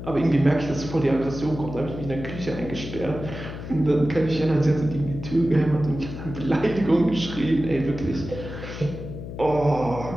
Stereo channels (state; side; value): noise; left; hum, 9 dB below the sound